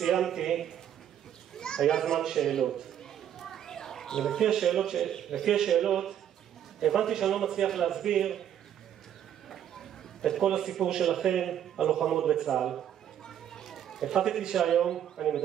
היה זמן שאלות. ולפי השאלות הבנתי שאני לא מצליח להסביר את כל הסיפור שלכם על לוחמות בצה"ל. החלטתי שהיום אני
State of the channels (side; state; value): left; quieter; 10.2 dB